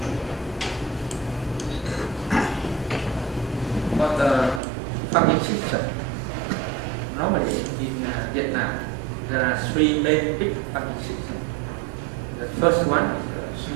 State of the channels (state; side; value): drops out; left; at 4.6 s